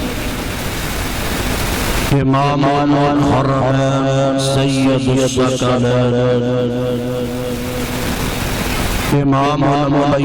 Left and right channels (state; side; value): identical; both; correlation 1.00